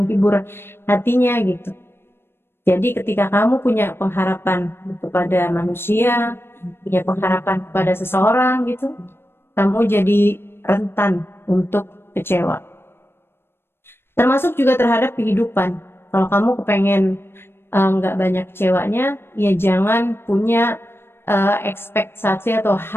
hatinya gitu. Jadi ketika kamu punya pengharapan kepada manusia, punya pengharapan kepada seseorang gitu, kamu jadi rentan untuk kecewa. Termasuk juga terhadap kehidupan. Kalau kamu kepengen nggak banyak kecewanya, ya jangan punya ekspektasi atau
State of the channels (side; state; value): right; late; 0.11 ms